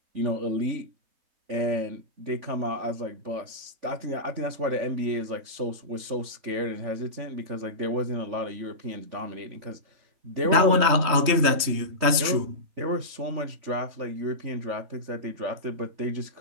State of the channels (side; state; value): left; late; 3.2 ms